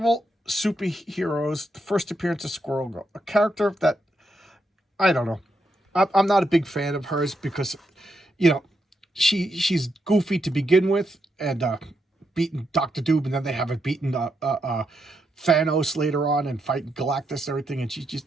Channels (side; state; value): both; normal; correlation 0.81